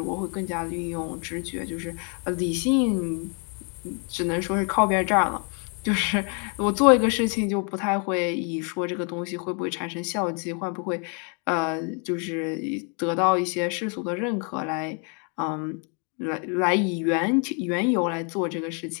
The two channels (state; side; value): quieter; right; 37.6 dB